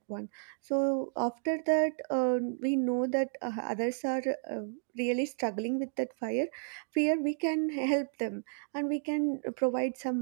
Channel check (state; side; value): silent; left; digital silence